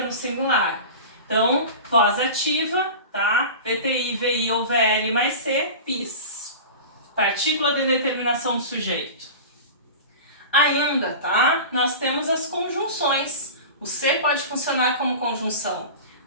no singular. Então, voz ativa, tá? VTI, VI ou VL mais C, PIS. Partícula de determinação do sujeito. Ainda, tá? Nós temos as conjunções. O se pode funcionar como conjunção.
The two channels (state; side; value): inverted; both; correlation -0.32